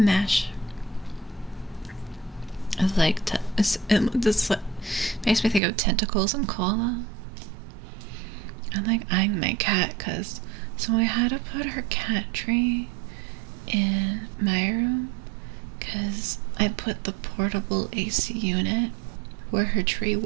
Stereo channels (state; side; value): drops out; left; at 5.6 s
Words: It's like, this like, makes me think of tentacles and cola. I'm like eyeing my cat because so I had to put her cat tree in my room because I put the portable AC unit where her tree